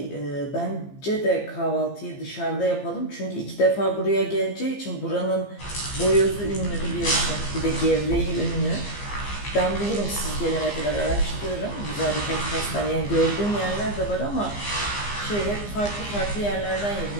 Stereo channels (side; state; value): right; late; 15 ms